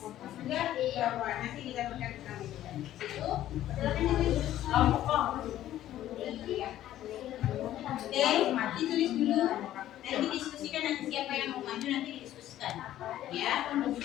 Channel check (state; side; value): quieter; right; 13.0 dB